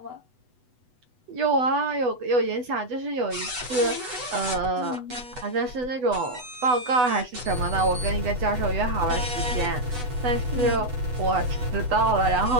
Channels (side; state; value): left; late; 8.1 ms